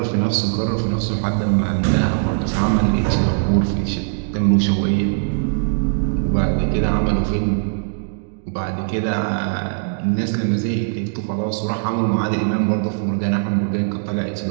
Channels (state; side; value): silent; left; digital silence